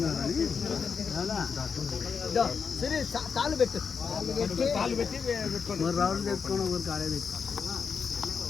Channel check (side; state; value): right; quieter; 6.0 dB